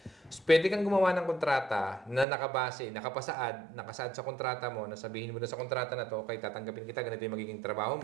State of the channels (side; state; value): left; drops out; at 2.2 s